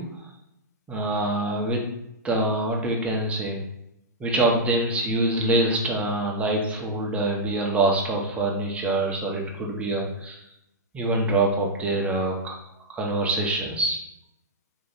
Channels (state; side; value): normal; both; correlation -0.05